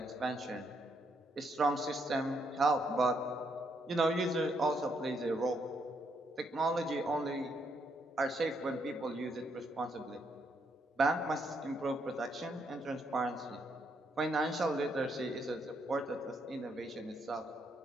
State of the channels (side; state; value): both; normal; correlation 0.75